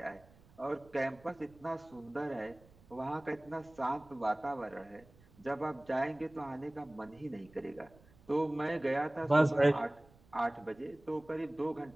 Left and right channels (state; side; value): noise; right; rumble, 26 dB below the sound